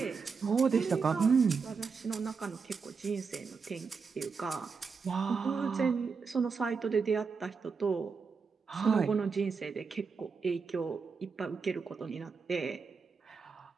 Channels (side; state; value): left; quieter; 5.2 dB